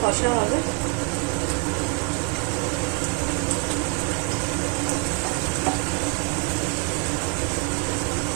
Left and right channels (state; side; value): quieter; left; 29.4 dB